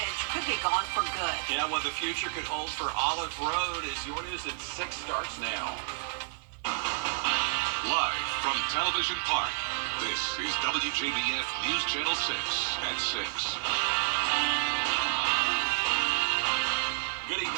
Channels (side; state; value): left; silent; 58 dB below the other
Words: could be gone for good. Yeah, what the future could hold for Olive Road is your news at 6 starts now. Live from Television Park, this is WJBF News Channel 6 at 6. Good